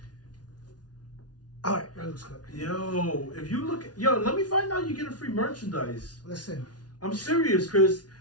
All right, that looks good. Yo, if you look, let me find out you get a free merchandise. Listen, I'm serious, Chris.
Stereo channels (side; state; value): right; late; 0.69 ms